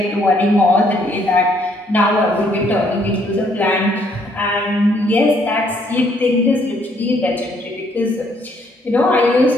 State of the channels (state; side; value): normal; both; correlation 0.68